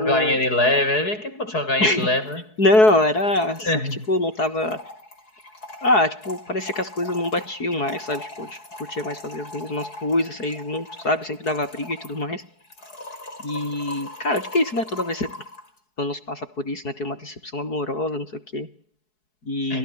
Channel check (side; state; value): right; late; 4.7 ms